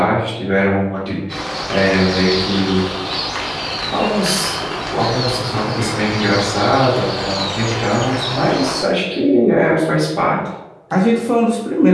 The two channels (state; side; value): identical; both; correlation 1.00